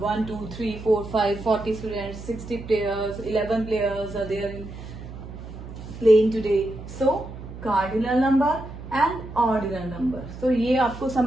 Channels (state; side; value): noise; right; hum, 12 dB below the sound